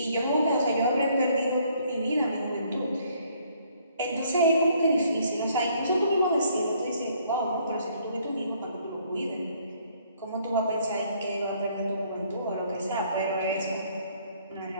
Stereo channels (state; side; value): inverted; both; correlation -0.64